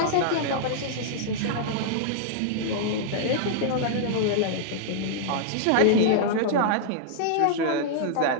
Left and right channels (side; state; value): both; different; correlation -0.01